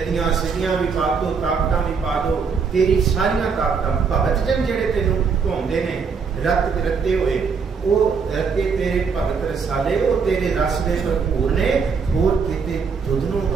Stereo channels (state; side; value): quieter; left; 5.6 dB